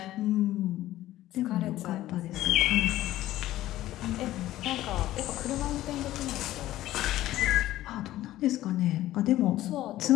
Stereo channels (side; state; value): right; quieter; 14.8 dB